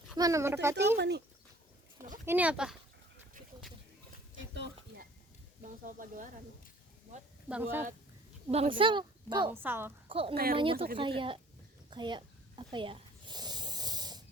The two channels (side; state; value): both; normal; correlation 0.53